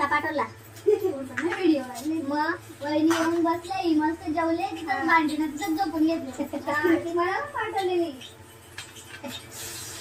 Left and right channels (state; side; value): identical; both; correlation 1.00